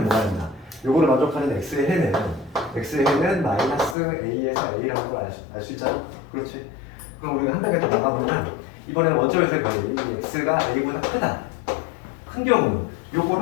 뭐가 된다. 요거를 만족하는 x의 해는 마이너스 a에서 a라는 걸 알 수 있잖아. 그렇지. 그럼 우리가 한 단계 더 나가보면 이번에 원점에서의 거리 x가 a보다 크다. 큰 경우는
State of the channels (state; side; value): drops out; right; at 4.0 s